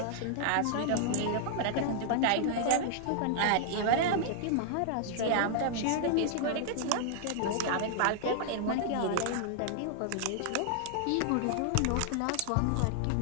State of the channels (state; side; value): different; both; correlation -0.01